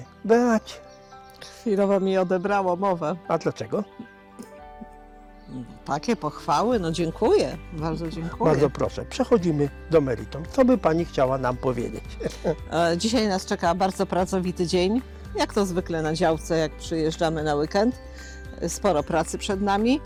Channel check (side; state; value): both; identical; correlation 1.00